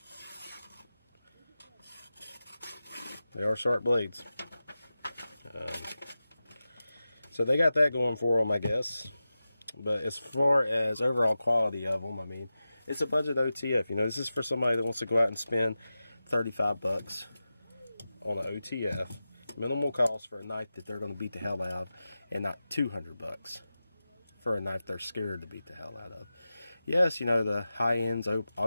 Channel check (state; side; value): inverted; both; correlation -0.93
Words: They are sharp blades. So they got that going for them, I guess. But as far as overall quality of them, I mean, it's a budget OTF. You know, this is for somebody that wants to go out and spend 35 bucks on an OTF. Minimal cost for a knife that they're going to beat the hell out of, and not 200 bucks for a knife they're scared to beat the hell out of. Yes, you know, the high ends